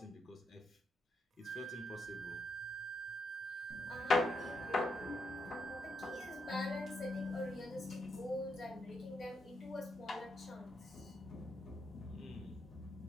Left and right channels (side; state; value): both; normal; correlation 0.80